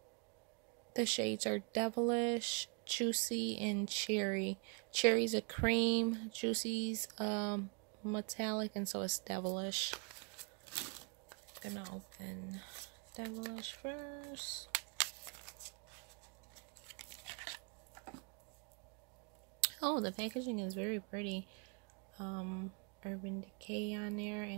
the shades are Devilish, Juicy, and Cherry. Cherry's a cream, Juicy's metallic, and so it's Devilish. I'm gonna open Devilish first. Oh, the packaging is very pretty. Urban Decay on there,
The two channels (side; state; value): left; quieter; 36.4 dB